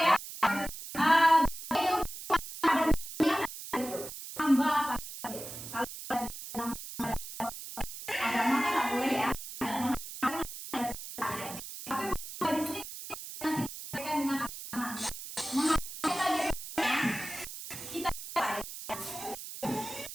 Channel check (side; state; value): right; noise; hiss, 10 dB below the sound